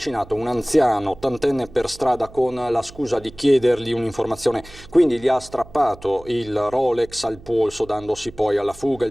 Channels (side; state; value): right; noise; hum, 20 dB below the sound